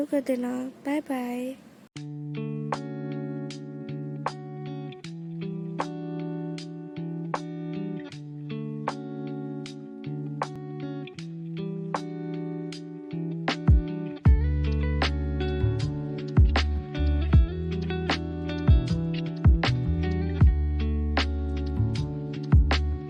कर देना। Bye bye.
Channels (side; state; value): both; identical; correlation 1.00